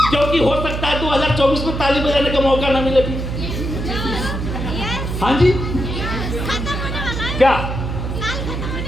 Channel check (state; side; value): noise; right; hum, 4 dB below the sound